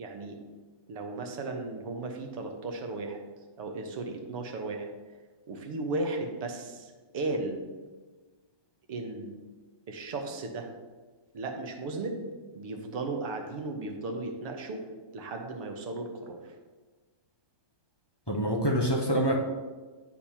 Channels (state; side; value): late; right; 1.2 ms